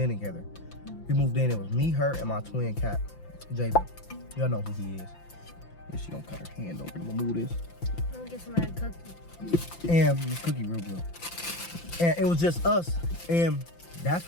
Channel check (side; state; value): right; late; 5.8 ms